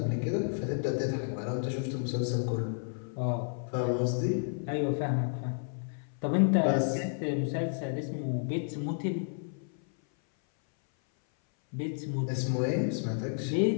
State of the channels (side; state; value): right; silent; 57 dB below the other